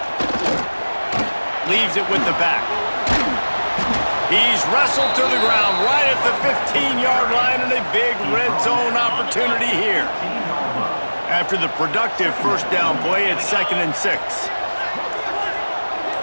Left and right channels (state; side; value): inverted; both; correlation -1.00